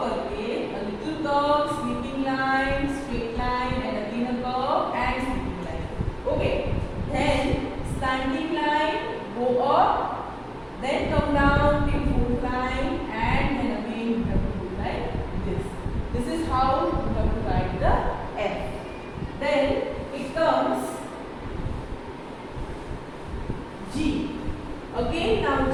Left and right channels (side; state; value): both; identical; correlation 1.00